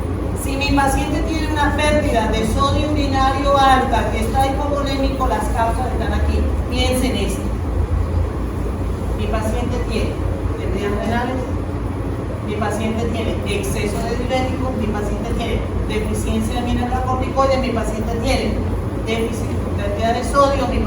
Si mi paciente tiene una pérdida de sodio urinario alta, que está hipovolémico, las causas están aquí. Piensen esto. Mi paciente tiene pérdidas renales, mi paciente tiene exceso de diurético, mi paciente tiene deficiencia de mineralocorticoides, mi paciente tiene déficit de cantidad de sodio, mi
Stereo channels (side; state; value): both; identical; correlation 1.00